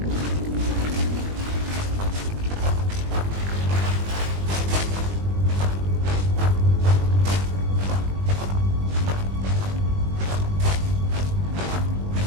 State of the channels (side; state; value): left; late; 20 ms